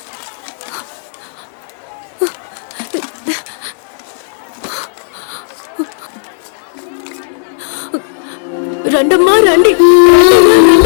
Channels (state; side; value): silent; right; digital silence